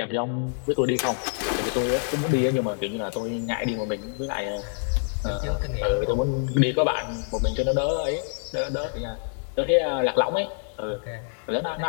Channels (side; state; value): right; silent; 61 dB below the other